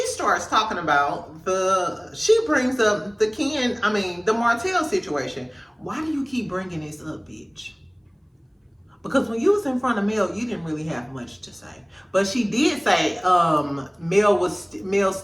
starts talking about she brings up the Martell situation. Why do you keep bringing this up, bitch? Because when you was in front of Mel, you didn't really have much to say. But she did say Mel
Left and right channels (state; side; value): identical; both; correlation 1.00